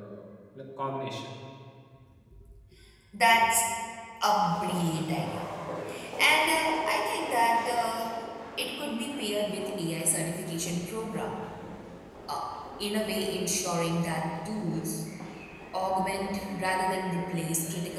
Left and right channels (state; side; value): identical; both; correlation 1.00